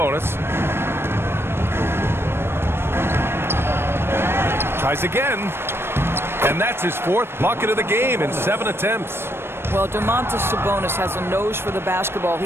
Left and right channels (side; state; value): left; late; 0.12 ms